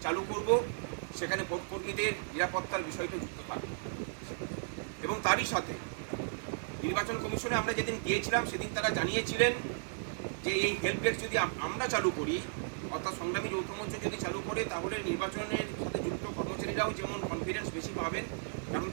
চালু করব, সেখানে ভোটকর্মীদের নিরাপত্তার বিষয়টা যুক্ত থাকবে। এবং তারই সাথে নির্বাচন কমিশনে আমরা যেদিন গিয়েছিলাম সেদিন তারা জানিয়েছিলেন যে এই হেল্প ডেস্ক যদি আমরা চালু করি, অর্থাৎ সংগ্রামী যৌথ মঞ্চ যদি চালু করে, তাহলে নির্বাচনের সাথে যুক্ত কর্মচারীরাও যেমন কনফিডেন্স বেশি পাবেন, কারণ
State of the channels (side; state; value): left; silent; digital silence